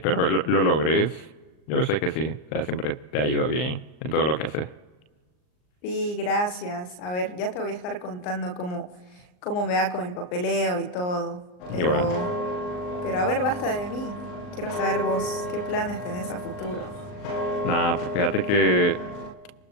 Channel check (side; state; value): right; late; 39 ms